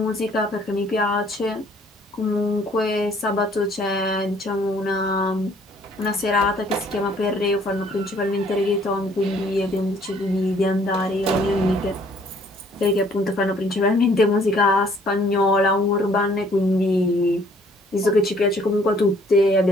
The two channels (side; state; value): both; normal; correlation 0.61